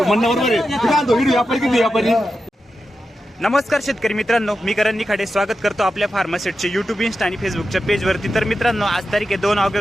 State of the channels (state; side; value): normal; both; correlation 0.90